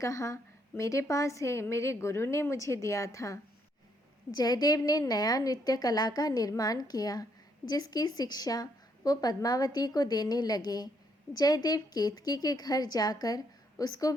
मेरे पास है, मेरे गुरु ने मुझे दिया था। जयदेव ने नया नृत्य कला का निर्माण किया, जिसकी शिक्षा वो पद्मावती को देने लगे। जयदेव केतकी के घर जाकर उसको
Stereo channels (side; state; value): both; normal; correlation 0.72